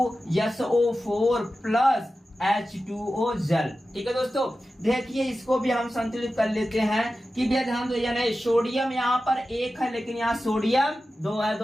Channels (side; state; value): both; normal; correlation 0.93